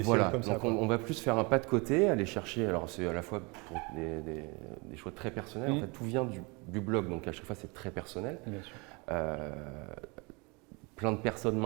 séries comme ça. Donc on va plus faire un pas de côté, aller chercher, alors c'est à la fois pour des choix très personnels, en fait tout vient du blog, donc à chaque fois c'est très personnel. Bien sûr. Plein de personnes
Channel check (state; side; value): quieter; left; 28.6 dB